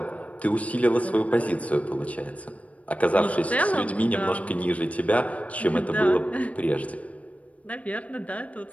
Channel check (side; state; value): right; late; 0.066 ms